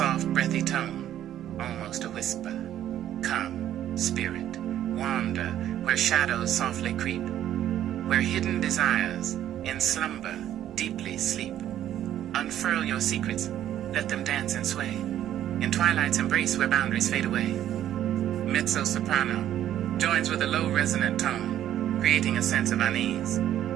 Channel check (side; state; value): left; quieter; 11.6 dB